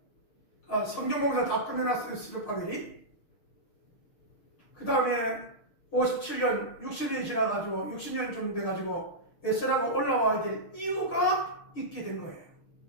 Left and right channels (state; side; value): late; right; 6.5 ms